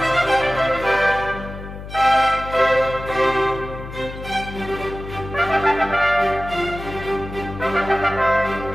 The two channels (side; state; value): left; noise; hum, 11 dB below the sound